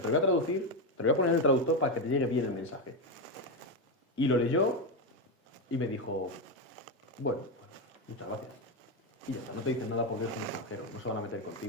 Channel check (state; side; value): normal; both; correlation 0.10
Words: lo voy a traducir, te lo voy a poner en el traductor para que te llegue bien el mensaje. Y lo leyó y me dijo, bueno, muchas gracias. Y ya está, no te dicen nada porque eres un extranjero, no se van a meter